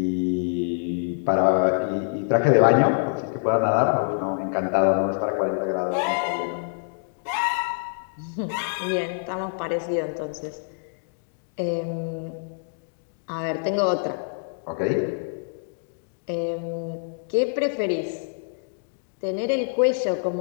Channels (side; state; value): right; silent; digital silence